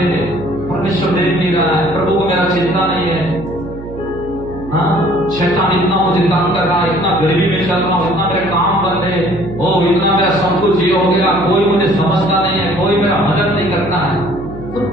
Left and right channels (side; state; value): right; noise; hum, 13 dB below the sound